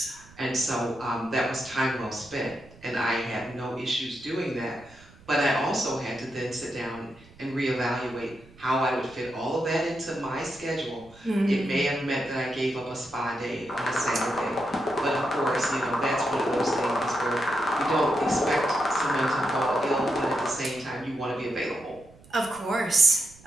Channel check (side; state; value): right; noise; rumble, 24 dB below the sound